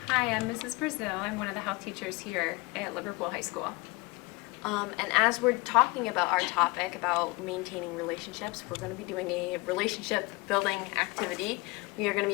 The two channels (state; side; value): quieter; right; 25.2 dB